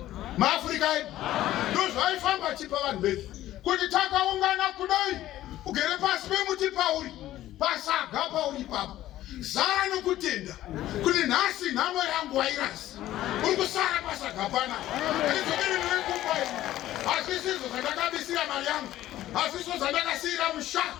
maAfrika edu ndozvaifamba chipa vanhu vedu kuti takaungana kudai ugere pasi pemuti pauri pasaga pauri papo zara nokutenda kuti nhasi nhamo yangu wairasi uri kusara pasaga pana izokere newekumbai hazvisizvo zvandakabisira mari yangu hazvisvo zvandakasiyira musha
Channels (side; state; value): right; quieter; 14.1 dB